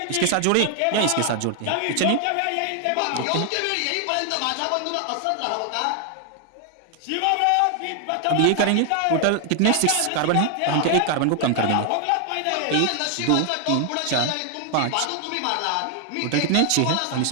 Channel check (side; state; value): both; different; correlation 0.00